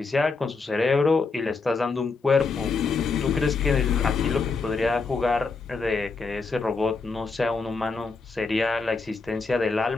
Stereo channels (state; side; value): quieter; right; 4.3 dB